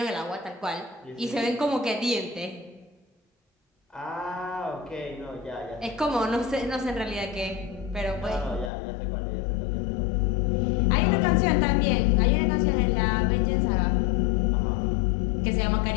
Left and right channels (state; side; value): drops out; right; at 8.7 s